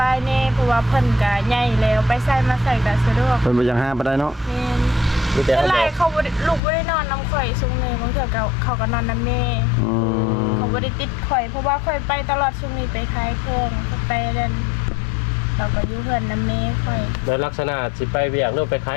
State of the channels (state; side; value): drops out; right; at 6.6 s